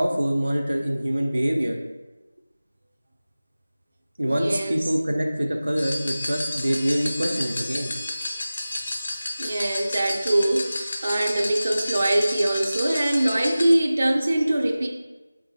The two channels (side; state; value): both; inverted; correlation -0.97